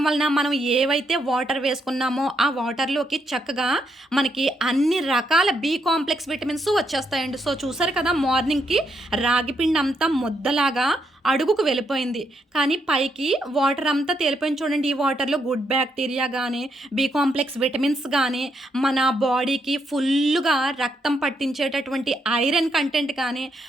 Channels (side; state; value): both; normal; correlation 0.78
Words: వలన మనం ఏవైతే వాటర్ వేసుకున్నామో ఆ వాటర్లోకి చక్కగా మనకి అన్ని రకాల బి కాంప్లెక్స్ విటమిన్స్ వచ్చేస్తాయండి. సో చూసారు కదా, మార్నింగ్కి రాగి పిండి అంతా ముద్దలాగా అడుగుకు వెళ్ళిపోయింది. కానీ పైకి వాటర్ అంతా తేలిపోయింది చూడండి. ఈ వాటర్‌లో గుడ్ బ్యాక్టీరియా గానీ, బి కాంప్లెక్స్ విటమిన్స్ గానీ, మన బాడీకి ఫుల్లుగా రక్తం పట్టించేటటువంటి ఐరన్ కంటెంట్ కానీ,